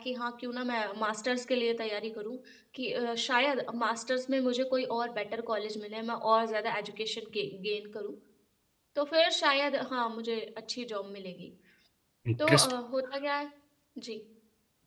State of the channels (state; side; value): identical; both; correlation 1.00